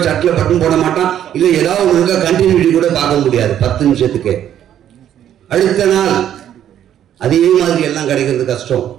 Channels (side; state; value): left; quieter; 10.6 dB